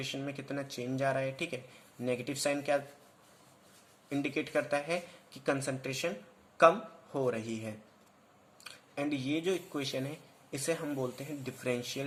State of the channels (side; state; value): both; identical; correlation 1.00